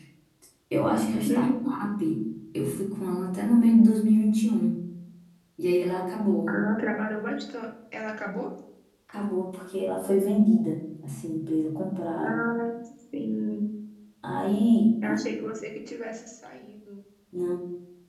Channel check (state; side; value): identical; both; correlation 1.00